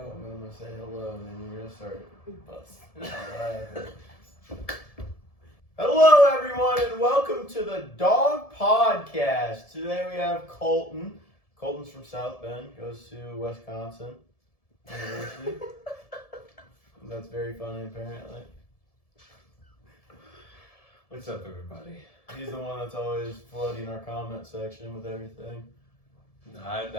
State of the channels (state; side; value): late; right; 1.7 ms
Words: I'm gonna say hello, and then you're gonna start busting out laughing. Hello, everyone, and welcome to the Dawg Podcast. Today we have Colten. Colten's from South Bend, goes to Wisconsin University. That's very funny, apparently. What's up, everybody? He's the one that's always flooding our comment section with everything. No,